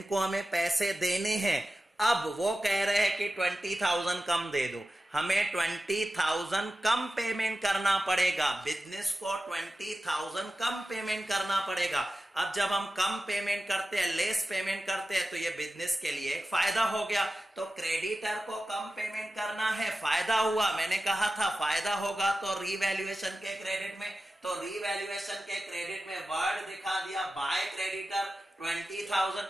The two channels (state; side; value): normal; both; correlation 0.94